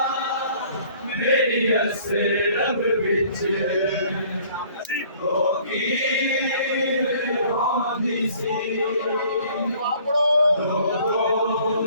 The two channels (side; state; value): both; inverted; correlation -0.55